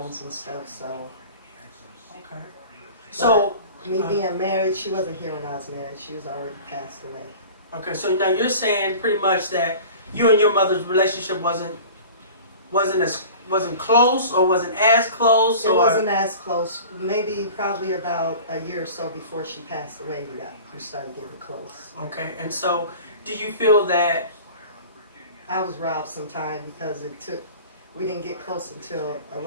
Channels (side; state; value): both; inverted; correlation -0.41